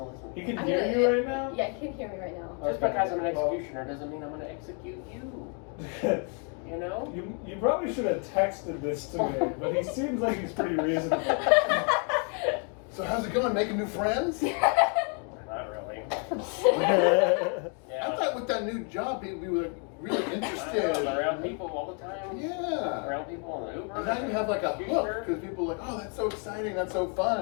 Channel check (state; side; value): quieter; right; 38.5 dB